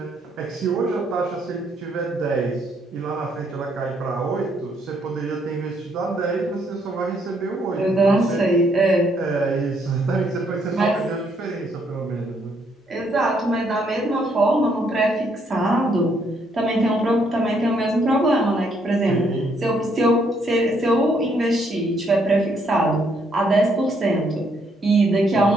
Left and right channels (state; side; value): normal; both; correlation 0.71